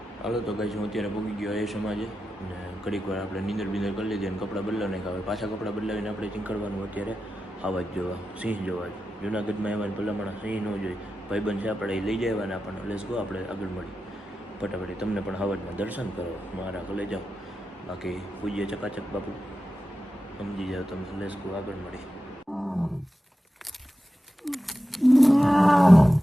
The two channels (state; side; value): normal; both; correlation 0.92